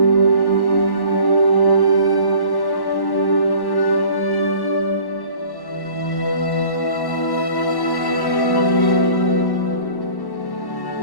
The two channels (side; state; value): right; late; 1.1 ms